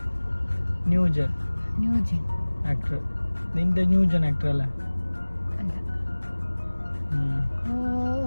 ന്യൂജൻ ആക്ടർ. നിന്റെ ന്യൂജൻ ആക്ടർ അല്ലേ?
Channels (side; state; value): both; inverted; correlation -1.00